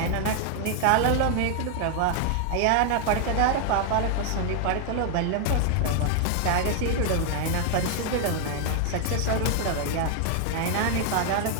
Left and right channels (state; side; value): different; both; correlation 0.00